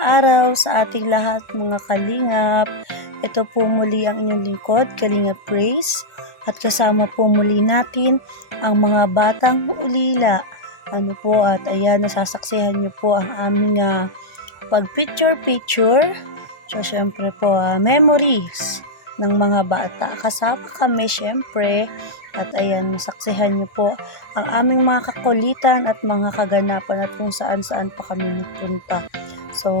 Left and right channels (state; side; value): late; right; 1.4 ms